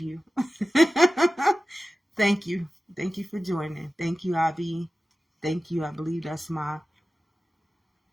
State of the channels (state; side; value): normal; both; correlation 0.95